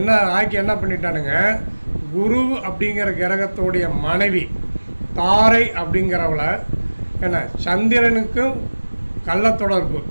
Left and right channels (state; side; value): inverted; both; correlation -1.00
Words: என்ன பண்ணிட்டானுங்க, குரு அப்படிங்கிற கிரகத்தோடைய மனைவி தாரை அப்படிங்கிறவளை சந்திரனுக்கும் கள்ள தொடர்பு,